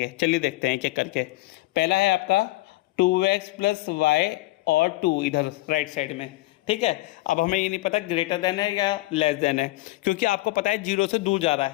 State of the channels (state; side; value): quieter; right; 19.4 dB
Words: चलिए देखते हैं एक-एक करके। पहला है आपका 2x + y और 2 इधर राइट साइड में, ठीक है। अब हमें ये नहीं पता ग्रेटर देन है या लेस देन है, क्योंकि आपको पता है 0 से दूर जा रहा